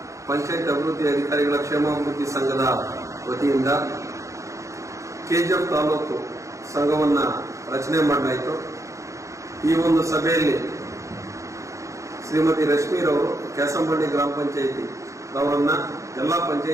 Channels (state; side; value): late; left; 0.15 ms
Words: ಪಂಚಾಯತ್ ಅಭಿವೃದ್ಧಿ ಅಧಿಕಾರಿಗಳ ಕ್ಷೇಮಾಭಿವೃದ್ಧಿ ಸಂಘದ ವತಿಯಿಂದ ಕೆಜಿಎಫ್ ತಾಲೂಕು ಸಂಘವನ್ನ ರಚನೆ ಮಾಡಲಾಯಿತು. ಈ ಒಂದು ಸಭೆಯಲ್ಲಿ ಶ್ರೀಮತಿ ರಶ್ಮಿರವರು ಕ್ಯಾಸಂಬಳ್ಳಿ ಗ್ರಾಮ ಪಂಚಾಯಿತಿ ಅವರನ್ನ ಎಲ್ಲಾ